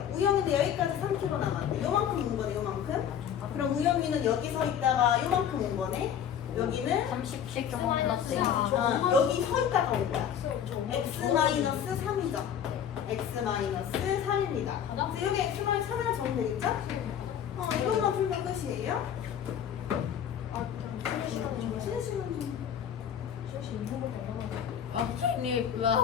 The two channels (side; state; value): right; quieter; 9.0 dB